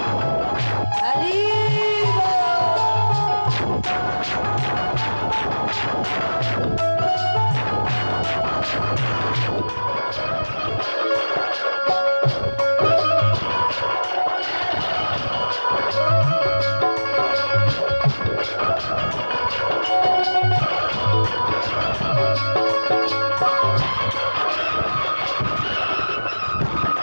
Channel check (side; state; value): both; inverted; correlation -1.00